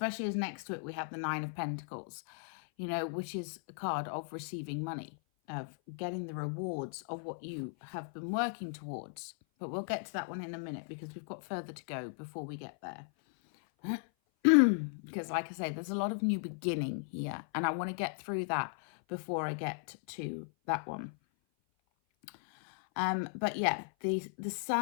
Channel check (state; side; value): silent; right; 53 dB below the other